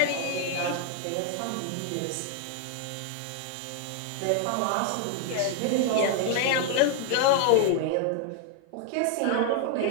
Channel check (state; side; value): different; both; correlation 0.00